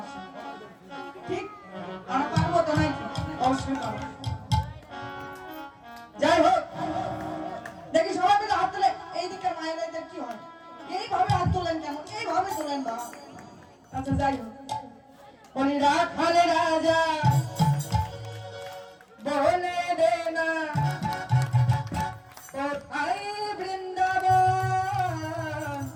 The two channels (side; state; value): both; identical; correlation 1.00